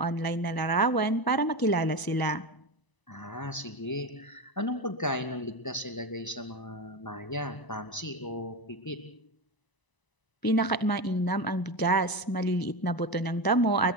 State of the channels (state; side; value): late; right; 1.0 ms